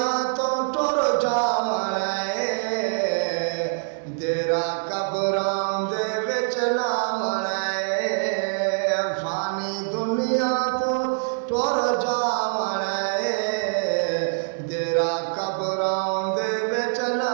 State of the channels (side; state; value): left; silent; 59 dB below the other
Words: तो टुर जावणे तेरा कबरां दे विच लावणे। फानी दुनिया तो टुर जावणे तेरा कबरां दे विच